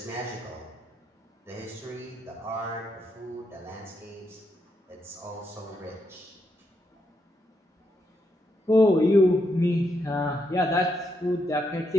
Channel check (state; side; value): normal; both; correlation 0.80